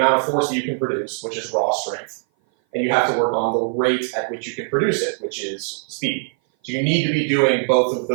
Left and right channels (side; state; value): left; silent; 58 dB below the other